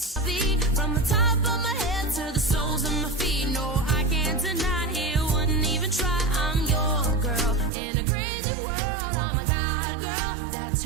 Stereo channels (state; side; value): drops out; left; at 7.7 s